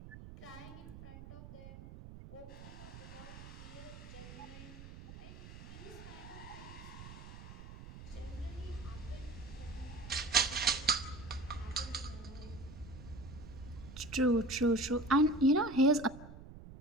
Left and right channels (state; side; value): noise; right; rumble, 14 dB below the sound